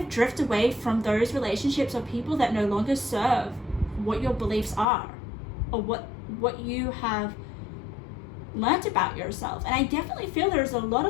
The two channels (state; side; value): drops out; right; at 4.9 s